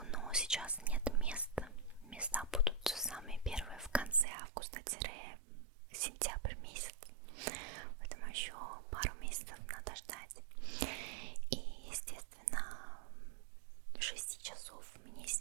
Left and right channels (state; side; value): drops out; left; at 4.2 s